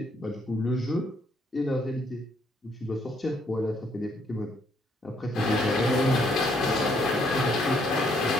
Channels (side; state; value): both; normal; correlation 0.69